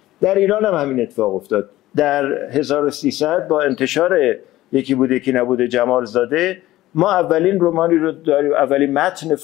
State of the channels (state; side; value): quieter; right; 15.9 dB